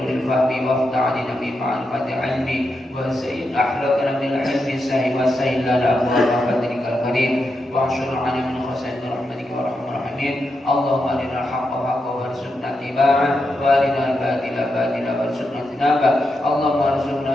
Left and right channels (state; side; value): normal; both; correlation 0.85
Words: fahmi wa aftah alina bi ma'rifatil ilmi wa sayyid akhlaqna bil ilmi sahih wa sayyid lana abwaaba fadlikal karim wa anshurna min khasain rahmatika wa rahmar rahimin. Allahumma arina al-haqqa haqqan warzuqna ittiba'ah wa arina al-batila batilan warzuqna ijtinabah. Allahumma arzuqna